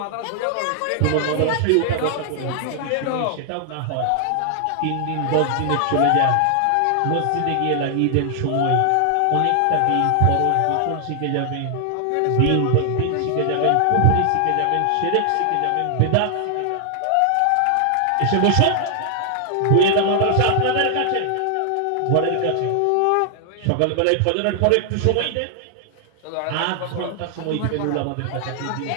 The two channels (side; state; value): both; different; correlation 0.00